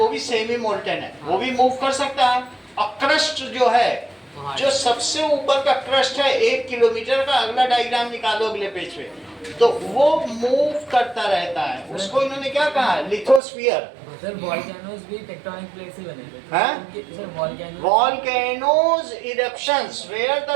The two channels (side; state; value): left; drops out; at 13.4 s